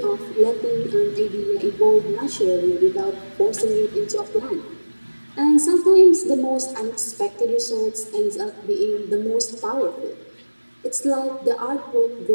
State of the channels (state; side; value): inverted; both; correlation -1.00